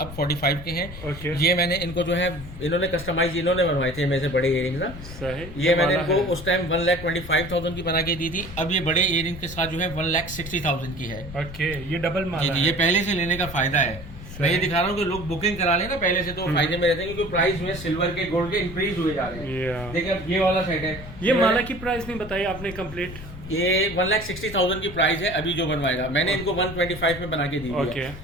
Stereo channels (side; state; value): left; noise; rumble, 13 dB below the sound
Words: 45 के हैं। ओके। ये मैंने इनको जो है, इन्होंने कस्टमाइज इन्होंने बनवाए थे मेरे से बड़े इयरिंग्स ना। सही। ये मैंने वाला इनको है। उस टाइम 1,25,000 की बना के दी थी, अब ये बड़े इयरिंग के साथ जो है 1,60,000 की है। ओके, ये डबल जी माला जी, ये पहले से लेने का फायदा है। मैं ये दिखा रहा हूँ कि लोग बुकिंग करा लें ना पहले से, तो फायदे में रहते हैं, क्योंकि प्राइस में सिल्वर के गोल्ड के इंक्रीज हुए जा रहे हैं। Yeah. देखिए, अब ये वाला सेट है। ये माला की प्राइस नहीं बताई आपने कंप्लीट? ये 1,60,000 की प्राइस है, अभी जो बनवाएगा। मैंने इनको 125 में बना के दी हुई है।